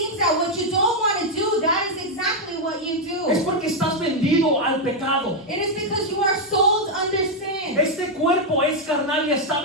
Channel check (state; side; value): normal; both; correlation 0.01